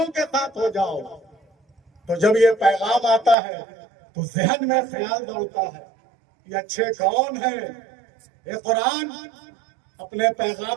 کے ساتھ ہو جاؤ۔ تو جب یہ پیغام آتا ہے تو ذہن میں خیال دوڑتا ہے یہ اچھے کون ہیں؟ یہ قرآن اپنے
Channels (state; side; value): drops out; left; at 3.4 s